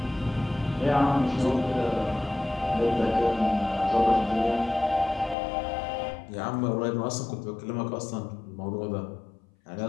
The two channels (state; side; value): drops out; right; at 5.4 s